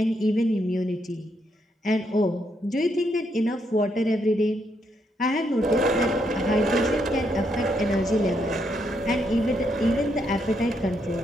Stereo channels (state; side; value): normal; both; correlation 0.77